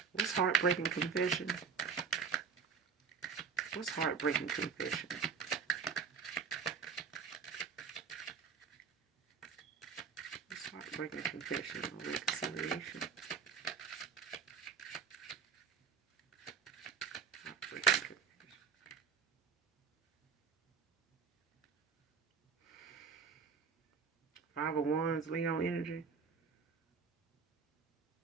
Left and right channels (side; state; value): left; quieter; 6.1 dB